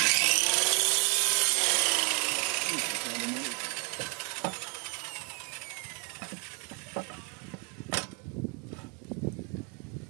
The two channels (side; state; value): left; quieter; 35.3 dB